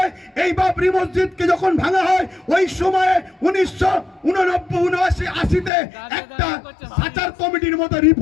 এই বাবরি মসজিদকে যখন ভাঙা হয়, ওই সময়ে 1989-80-তে একটা সাচার কমিটির মতো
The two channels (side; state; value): right; drops out; at 5.7 s